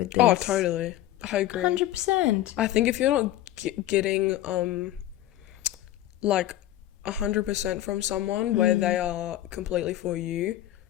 this. Oh, totally. I agree. 100%. I think if you're not getting like 100% from someone where they are completely for you,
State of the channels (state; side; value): quieter; right; 13.8 dB